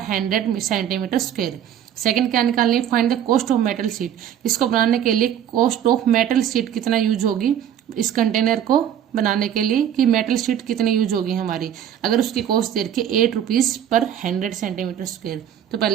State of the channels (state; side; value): quieter; left; 9.9 dB